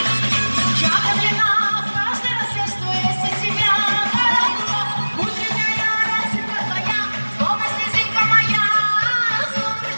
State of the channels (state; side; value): inverted; both; correlation -1.00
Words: Я влюблена в каждый рассвет, что есть у тебя, каракула. Утренняя росинка твоя, словно слезинка моя.